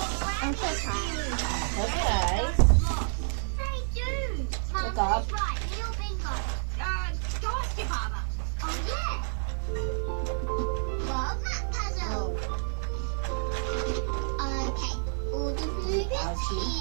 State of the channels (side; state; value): left; silent; digital silence